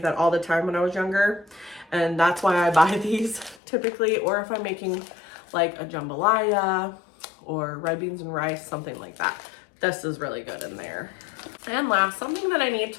that all the time when I was younger, and that's why I buy these typically, or if I'm making like a jambalaya or red beans and rice, something like that. This is really good in there. And last, something that I need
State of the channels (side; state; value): right; drops out; at 3.6 s